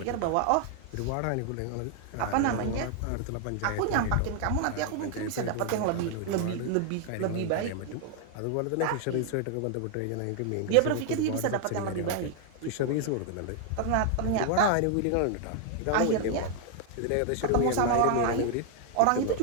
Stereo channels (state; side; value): different; both; correlation 0.00